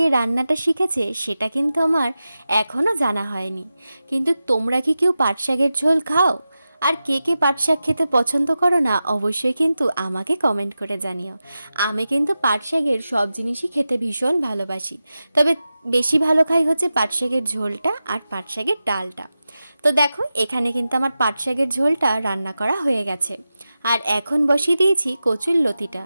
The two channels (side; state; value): both; inverted; correlation -0.93